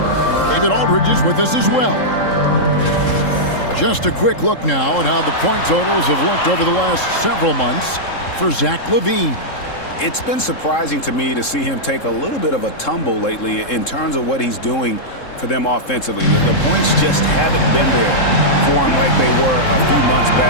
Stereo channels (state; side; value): late; right; 3.7 ms